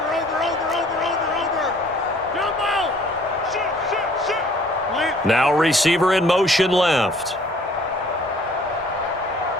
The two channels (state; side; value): normal; both; correlation 0.56